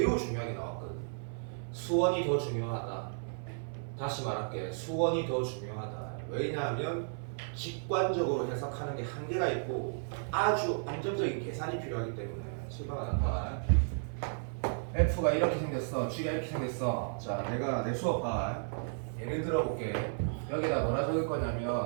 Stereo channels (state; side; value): silent; left; 55 dB below the other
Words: 중요하게 나왔거든. 수원이 더 중요하다. 다시 말할게. 수원이 더 중요하다. 왜냐하면 직관적으로 해석하는 게 한계가 있고 아주 안정적인 계산이 필요하기 때문에 실망하는 말. F가 이렇게 생겼어. G가 이렇게 생겼어. 자, 내가 내 수업 봐. 예를 들어볼게. 여기다 뭐라 적을